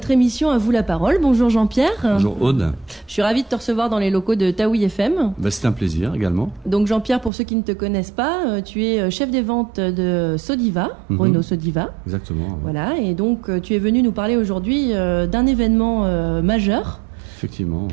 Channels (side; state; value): left; drops out; at 7.3 s